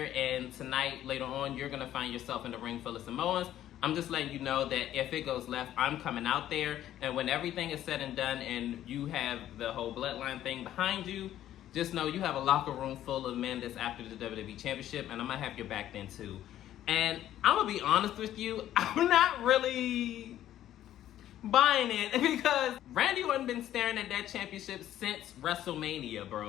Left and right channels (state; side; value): quieter; right; 12.3 dB